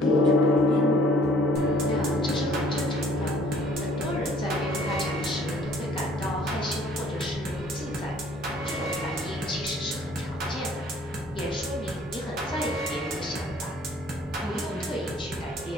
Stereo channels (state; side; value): normal; both; correlation 0.57